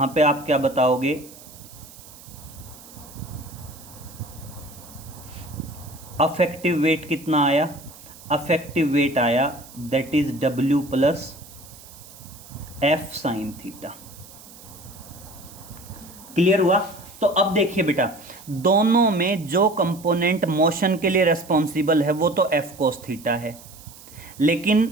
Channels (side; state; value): right; noise; hiss, 20 dB below the sound